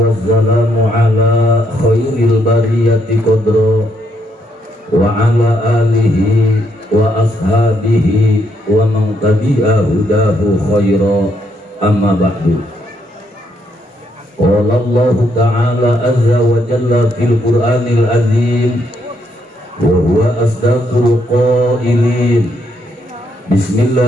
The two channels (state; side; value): normal; both; correlation 0.75